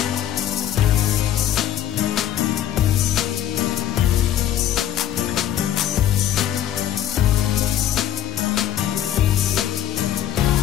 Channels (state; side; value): quieter; right; 11.1 dB